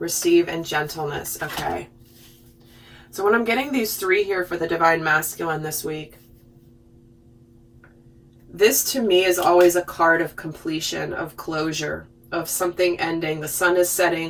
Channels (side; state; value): both; identical; correlation 1.00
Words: and gentleness. Okay. So when I'm getting these three here for the divine masculine this week, this to me is always a card of completion, of closure, of something ending. The sun is